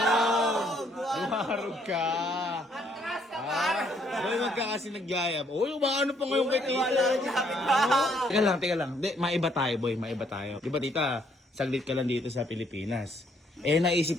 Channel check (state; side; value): normal; both; correlation 0.68